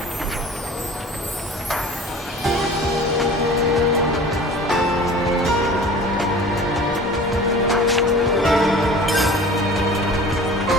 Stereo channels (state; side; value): normal; both; correlation 0.42